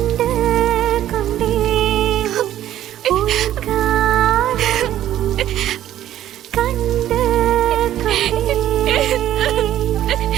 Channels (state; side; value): quieter; left; 12.4 dB